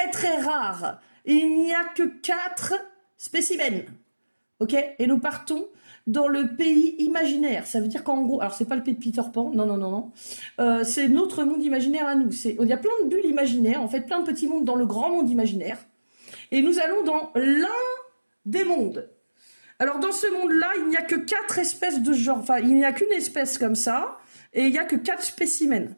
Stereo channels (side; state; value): both; inverted; correlation -1.00